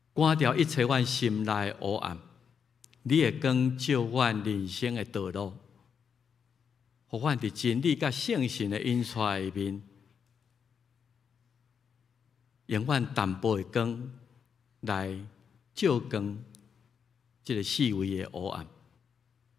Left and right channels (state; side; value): quieter; right; 6.8 dB